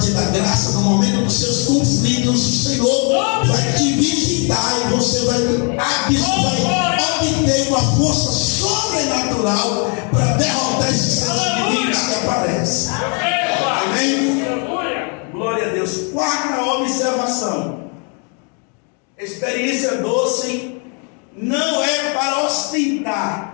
dar graça no momento dos seus conflitos. O Senhor vai te visitar e você vai obter uma força sobrenatural para derrotar esses seus inimigos que aparecem. Amém? Glória a Deus. Quarta observação: experiência doce não é para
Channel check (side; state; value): right; quieter; 37.8 dB